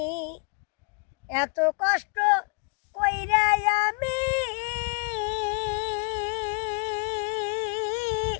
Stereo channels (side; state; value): right; quieter; 36.9 dB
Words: এত কষ্ট কইরা আমি